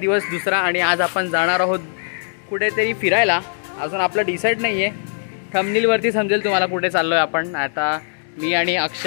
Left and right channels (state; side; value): silent; right; 66 dB below the other